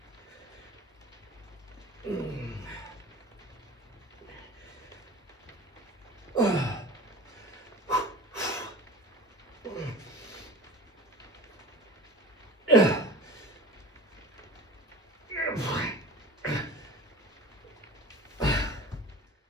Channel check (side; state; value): both; normal; correlation 0.38